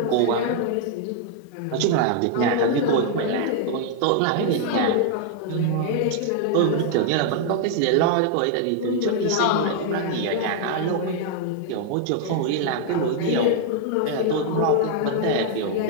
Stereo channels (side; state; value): both; different; correlation 0.00